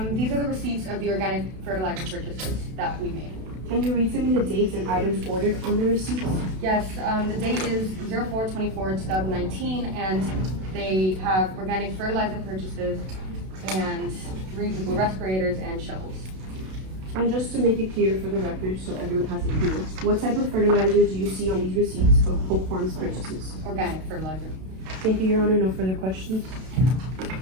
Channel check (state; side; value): late; left; 32 ms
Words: These are the receipts of the organic fertilizer purchases that we made. Can you read to me the dates and items ordered on the receipts? Yes, the date is 04/24/2019, and they have organic fertilizer purchases and 3 people respirators and shovels. And just to make it clear for the record, so everyone has it clear, what type of fertilizer do you see on these receipts of Polk Farms purchases? Organic fertilizer. Thank you, Your Honor. No further questions.